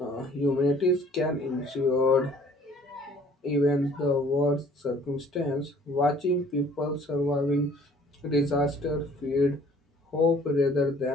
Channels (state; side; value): normal; both; correlation 0.55